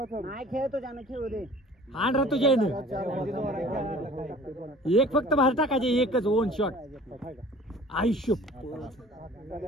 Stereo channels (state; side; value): normal; both; correlation 0.47